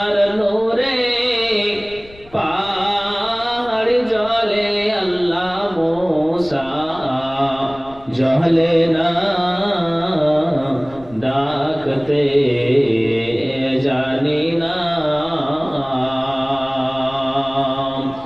নূরে পাহাড় জ্বলে আল্লাহ মুসা জ্বলে না, ডাকতে জানি না।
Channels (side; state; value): left; noise; rumble, 23 dB below the sound